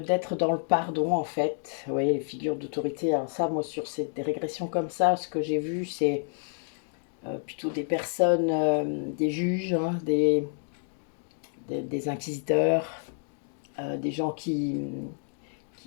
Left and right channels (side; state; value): right; silent; digital silence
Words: dans le pardon en fait. Vous voyez, les figures d'autorité. Alors ça, moi sur des régressions comme ça, ce que j'ai vu, c'est plutôt des personnes, des juges, hein, des inquisiteurs, des gens qui